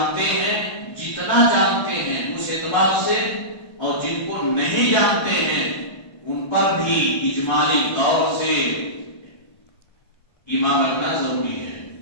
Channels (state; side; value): late; right; 1.3 ms